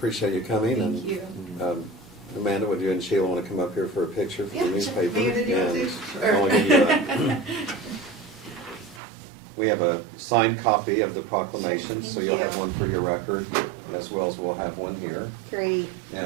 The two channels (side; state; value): left; drops out; at 9.0 s